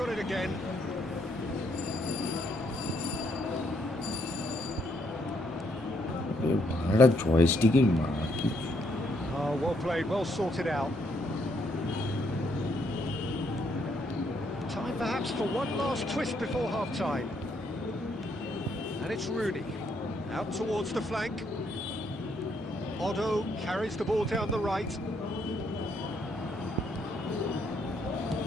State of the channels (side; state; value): both; normal; correlation 0.73